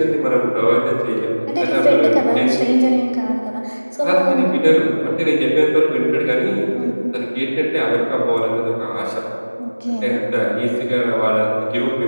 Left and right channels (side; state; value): both; inverted; correlation -1.00